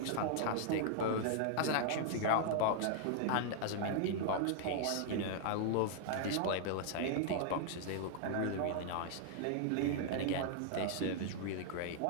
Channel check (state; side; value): different; both; correlation 0.00